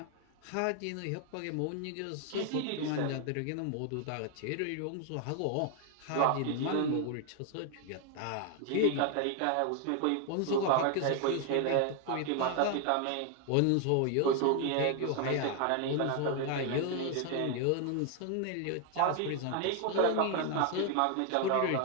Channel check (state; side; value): different; both; correlation 0.01